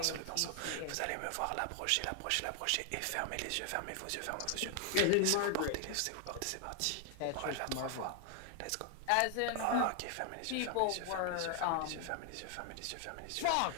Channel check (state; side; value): different; both; correlation 0.00